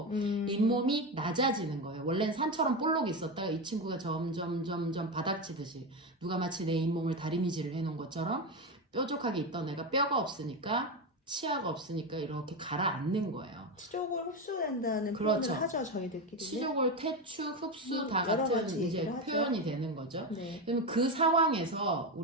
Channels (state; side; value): normal; both; correlation 0.15